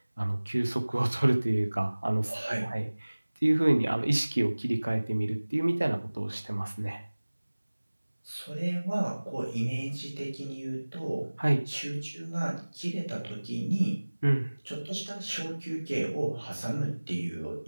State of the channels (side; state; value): both; inverted; correlation -1.00